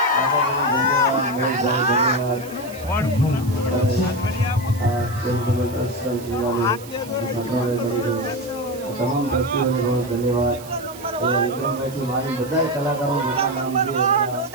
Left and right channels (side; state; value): right; noise; hiss, 18 dB below the sound